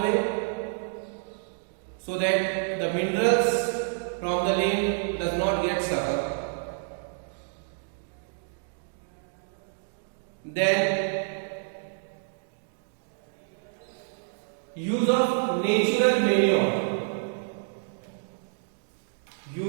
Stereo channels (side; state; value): left; silent; digital silence